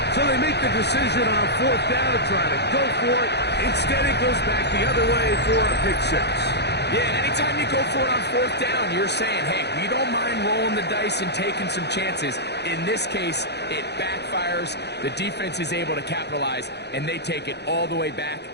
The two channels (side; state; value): right; late; 0.49 ms